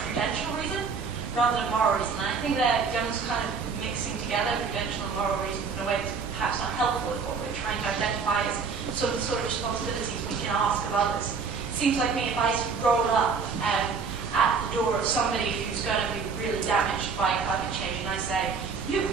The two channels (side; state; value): left; quieter; 5.3 dB